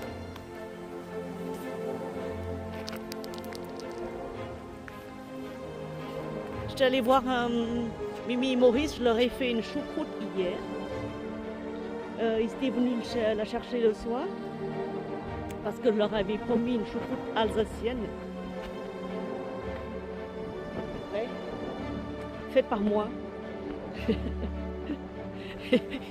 J'étais allée voir Mimi et Maurice, je leur ai fait une choucroute hier. Ils étaient venus la chercher le soir parce que je leur avais promis une choucroute alsacienne. Ouais. Faite par moi.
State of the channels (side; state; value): both; identical; correlation 1.00